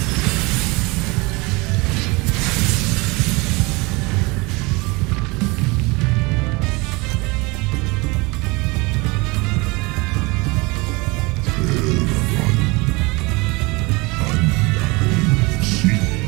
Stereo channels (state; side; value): quieter; left; 25.5 dB